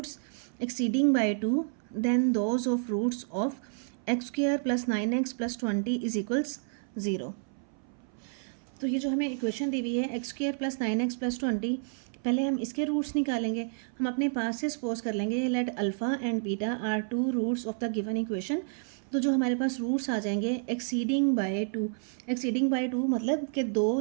exceeding by 2 then those of roots of x square plus 9x plus 20 is equals 0। तो ये जो हमें इक्वेशन दी हुई है x square plus 9x plus 20, पहले हम इसके रूट्स निकालेंगे। हम अपने पास से सपोज कर लेंगे let alpha and beta are 2 roots of the given equation. तो जो हमारे पास रूट्स आ जाएंगे एक्सीडिंग बाय 2, एक्सीडिंग बाय 2 मतलब कि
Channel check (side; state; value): left; silent; 58 dB below the other